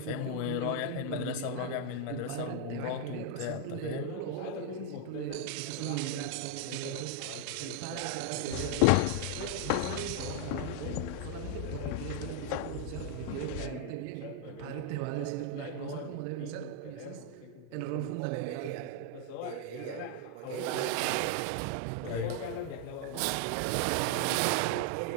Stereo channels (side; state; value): both; different; correlation 0.00